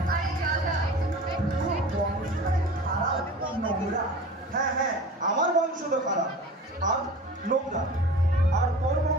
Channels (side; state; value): both; normal; correlation 0.38